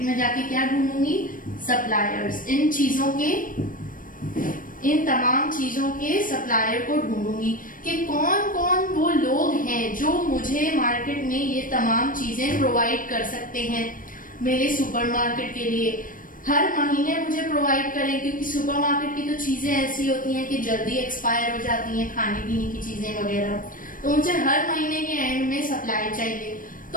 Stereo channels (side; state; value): right; late; 0.40 ms